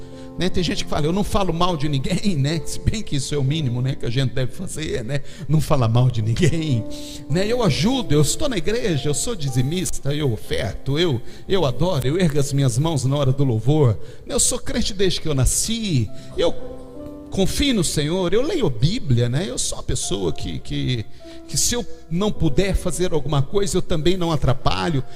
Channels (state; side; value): identical; both; correlation 1.00